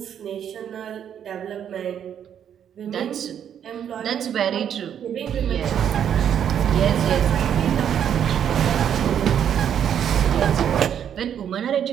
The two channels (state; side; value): quieter; left; 9.0 dB